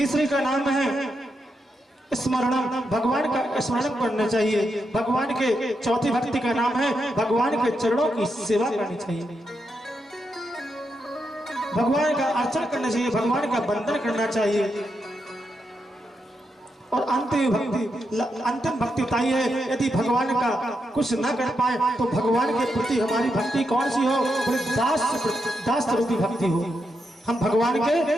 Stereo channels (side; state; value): both; normal; correlation 0.83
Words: का नाम है स्मरणम, भगवान का स्मरण करना चाहिए। भगवान के चौथी भक्ति का नाम है भगवान के चरणों की सेवा करनी चाहिए, भगवान का अर्चन करना चाहिए, भगवान का वंदन करना चाहिए। और अंतिम भक्ति ताई है, यदि भगवान का कुछ न कर पाए तो भगवान के प्रति हमारी भक्ति कौन सी हो? दास रूपी भक्ति हो। हम भगवान